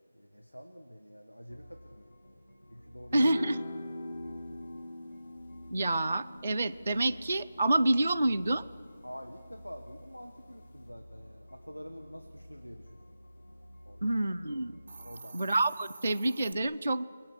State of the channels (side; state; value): both; inverted; correlation -0.92